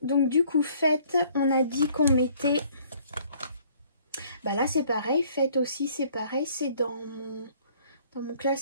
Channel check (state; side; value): inverted; both; correlation -0.59